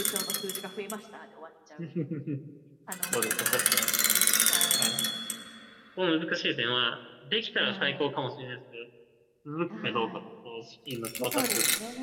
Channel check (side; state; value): both; identical; correlation 1.00